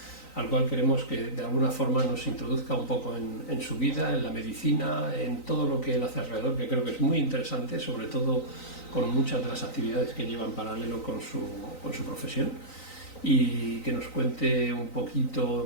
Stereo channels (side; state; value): right; late; 3.9 ms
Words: al cual queremos que de alguna forma nos introduzca un poco en su vida, en la medicina, en todo lo que él hace alrededor, que creo que es muy interesante, sobre todo con muchas de las actividades que lleva en paralelo con su profesión, y que nos cuente un